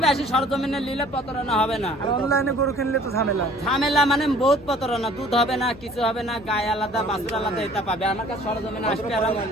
আসি সরজমিনে নিলে প্রতারণা হবে না। আর অনলাইনে গরু কিনলে তো ঝামেলা। ঝামেলা মানে বহুত প্রতারণা। দুধ হবে না, কিছু হবে না, গায়ে আলাদা বাছুর আলাদা এটা পাবে। আমার কাছে সরজমিনে আসবে আর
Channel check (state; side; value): noise; left; hum, 21 dB below the sound